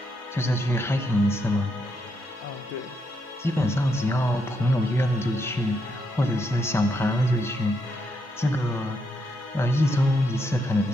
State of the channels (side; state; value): both; normal; correlation 0.79